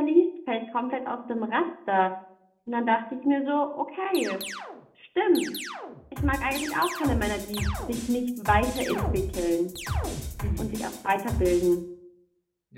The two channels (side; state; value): both; identical; correlation 1.00